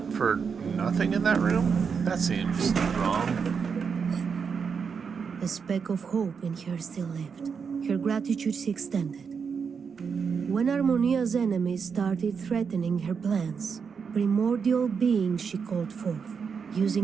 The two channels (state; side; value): quieter; left; 6.1 dB